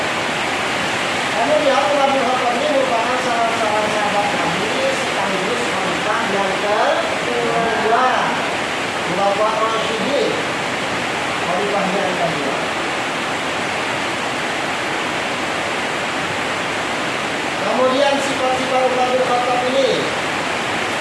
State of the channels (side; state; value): both; identical; correlation 1.00